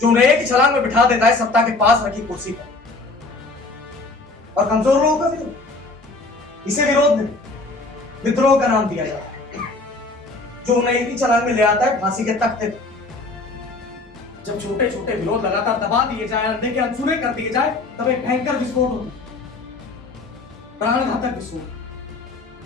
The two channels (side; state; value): right; quieter; 3.4 dB